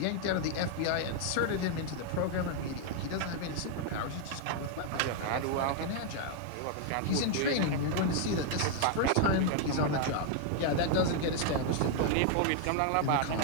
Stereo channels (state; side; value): different; both; correlation 0.00